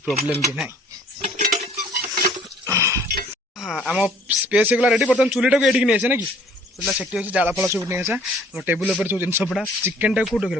भी ना हाँ आम स्पेस होगा रेडी बर्तमान चूलीटा को ये नहीं आसे ना कि चूला से अच्छी जाल फल सब नहीं आसा टेबुल पर सब जिन पड़ा चिकेन टाइम कौट रखे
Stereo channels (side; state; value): both; normal; correlation 0.55